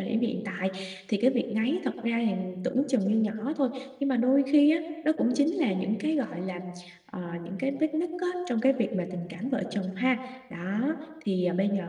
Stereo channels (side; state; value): both; identical; correlation 1.00